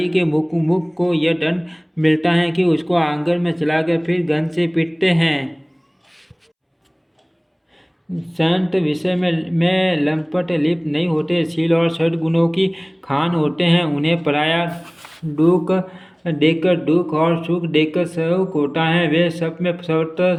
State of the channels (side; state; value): both; identical; correlation 1.00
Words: के मुख को यह दंड मिलता है कि उसको आंगन में चलाकर फिर गन से पीटते हैं। संत विषय में लंपट लिप्त नहीं होते, शील और सद्गुणों की खान होते हैं। उन्हें पराया दुख देकर दुख और सुख देकर सुख होता है। वे